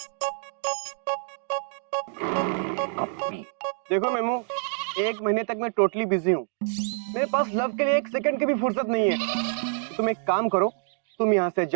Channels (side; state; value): left; silent; 60 dB below the other